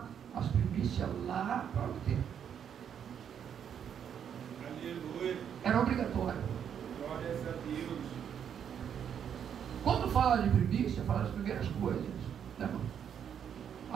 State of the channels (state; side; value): quieter; left; 8.4 dB